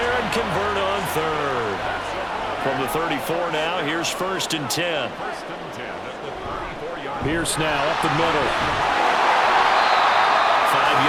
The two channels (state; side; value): identical; both; correlation 1.00